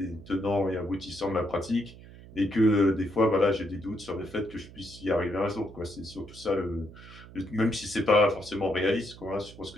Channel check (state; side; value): noise; right; hum, 18 dB below the sound